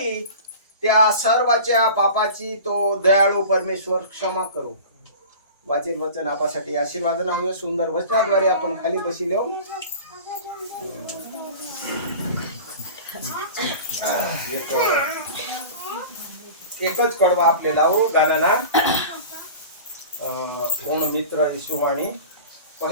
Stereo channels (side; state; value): both; inverted; correlation -0.37